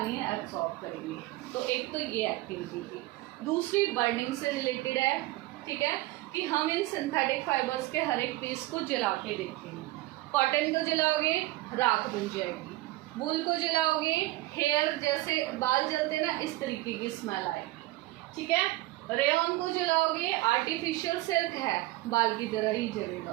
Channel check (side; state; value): left; quieter; 18.5 dB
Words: एब्जॉर्ब करेंगे। तो एक तो ये एक्टिविटी थी। दूसरी बर्निंग से रिलेटेड है, ठीक है, कि हम इन सिंथेटिक फाइबर्स के हर एक पीस को जला के देखेंगे। कॉटन को जलाओगे राख बन जाएगी, वूल को जलाओगे हेयर जैसे बाल जलते ना इस तरीके की स्मेल आएगी, ठीक है। रेयन को जलाओगे आर्टिफिशियल सिल्क है, बाल की तरह ही